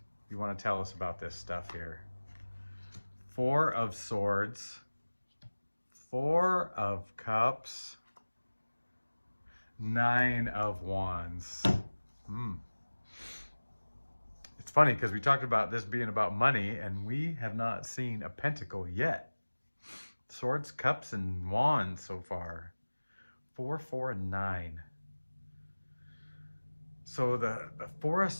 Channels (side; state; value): both; inverted; correlation -1.00